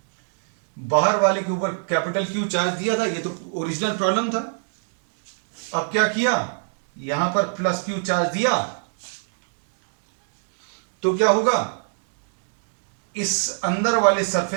बाहर वाले के ऊपर कैपिटल क्यू चार्ज दिया था, ये तो ओरिजिनल प्रॉब्लम था। अब क्या किया? यहां पर प्लस क्यू चार्ज दिया, तो क्या होगा? इस अंदर वाले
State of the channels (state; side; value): silent; left; digital silence